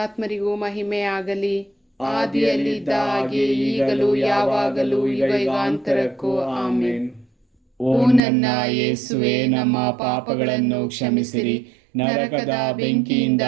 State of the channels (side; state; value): left; drops out; at 8.2 s